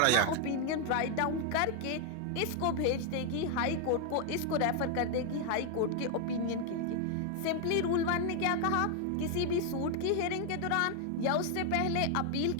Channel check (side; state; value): both; different; correlation 0.00